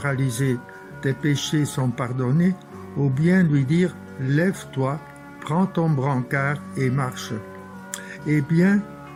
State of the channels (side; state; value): both; identical; correlation 1.00